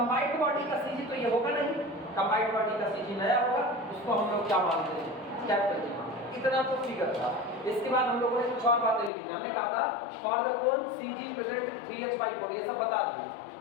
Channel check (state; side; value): drops out; right; at 9.1 s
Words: बॉडी का सीजी तो ये होगा नहीं, कंबाइंड बॉडी का सीजी नया होगा, उसको हम लोग क्या मानते हैं, कैपिटल जी। इतना तो फिगर था। इसके बाद हम लोगों ने कुछ और बातें लिखी थी। हमने कहा था for the cone CG present 3h/4, ये सब बता दिए।